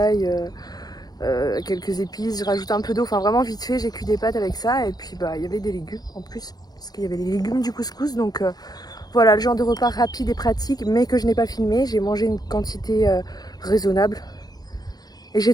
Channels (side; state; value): right; late; 0.19 ms